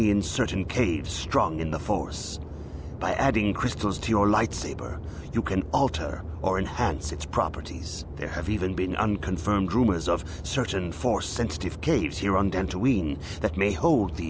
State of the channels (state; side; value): identical; both; correlation 1.00